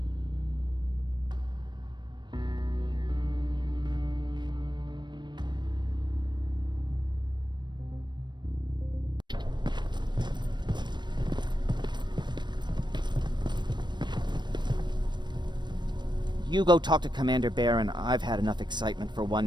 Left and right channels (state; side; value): late; left; 0.22 ms